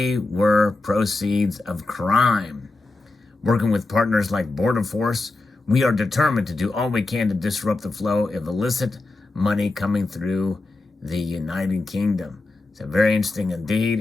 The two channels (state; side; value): quieter; right; 3.2 dB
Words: were proceeds of crime. Working with partners like Border Force, we are determined to do all we can to disrupt the flow of illicit money coming through the United Kingdom. So very interesting indeed,